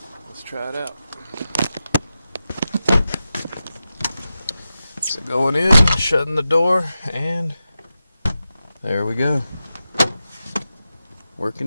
let's try it out. So going in, shutting the door, and there we go.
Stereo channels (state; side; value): inverted; both; correlation -0.92